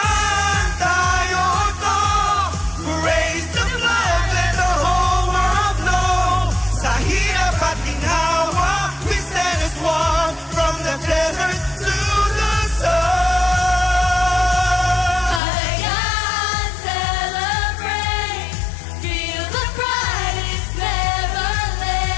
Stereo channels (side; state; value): right; drops out; at 15.4 s